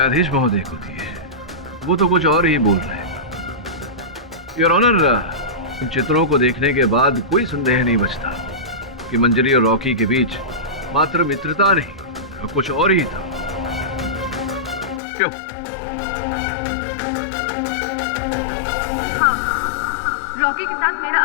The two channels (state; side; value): drops out; right; at 15.0 s